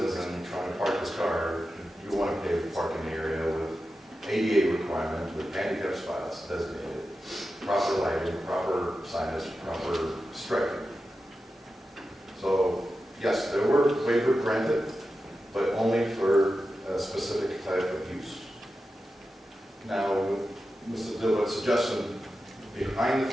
and trying to park his car, you want to pave the parking area with ADA requirements, with handicap spots designated, proper lighting, proper signage, proper striping. So, yes, there were waivers granted, but only for a specific type of use. Now, Mr. Dilbert's suggestion, behind the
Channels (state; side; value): normal; both; correlation 0.91